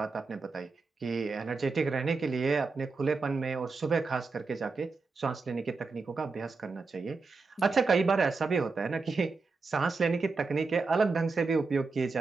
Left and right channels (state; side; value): quieter; left; 4.2 dB